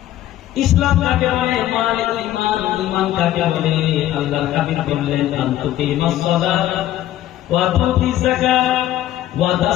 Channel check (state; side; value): quieter; right; 13.3 dB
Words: ইসলাম কাকে বলে, মাল ঈমান, ঈমান কাকে বলে? আল্লাহর হাবিব বললেন, আন তুকিমাস সালাত ওয়া তুতিজ যাকাত ওয়া